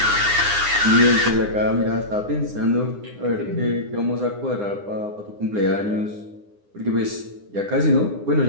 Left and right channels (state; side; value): late; left; 9.8 ms